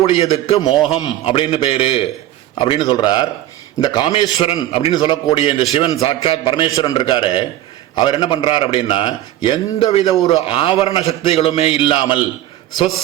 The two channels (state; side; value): quieter; left; 13.6 dB